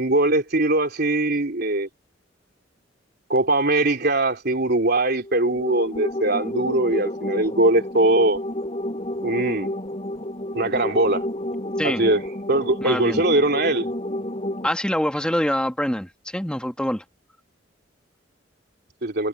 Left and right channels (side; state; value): both; normal; correlation 0.13